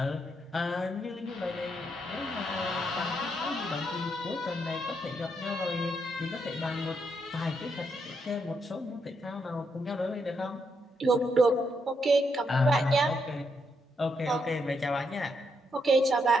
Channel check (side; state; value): both; normal; correlation 0.79